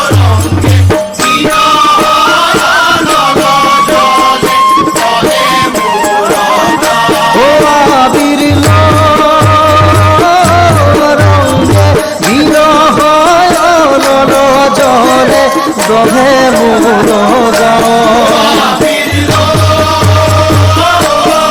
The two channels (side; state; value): both; identical; correlation 1.00